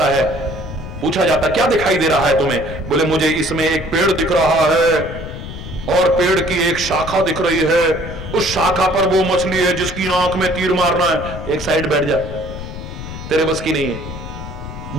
है, पूछा जाता क्या दिखाई दे रहा है तुम्हें? बोले मुझे इसमें एक पेड़ दिख रहा है और पेड़ की एक शाखा दिख रही है, उस शाखा पर वो मछली है जिसकी आंख में तीर मारना है। एक साइड बैठ जा, तेरे बस की नहीं है।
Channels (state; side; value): noise; left; rumble, 10 dB below the sound